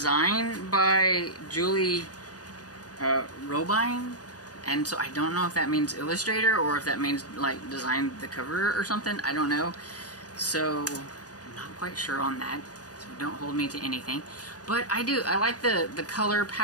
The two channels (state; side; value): late; right; 0.68 ms